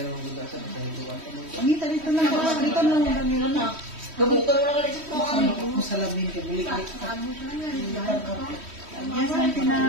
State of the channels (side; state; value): left; late; 3.1 ms